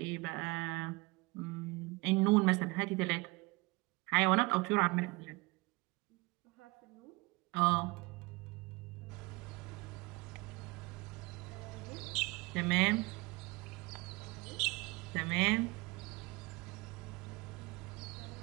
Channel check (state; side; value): quieter; left; 25.1 dB